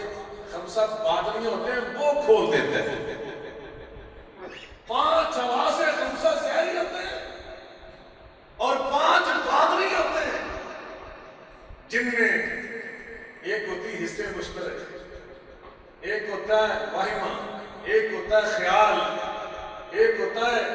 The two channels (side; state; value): both; identical; correlation 1.00